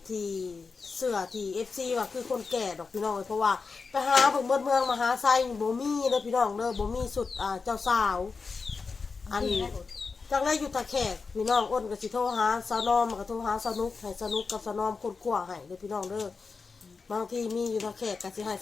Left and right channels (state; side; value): quieter; right; 4.7 dB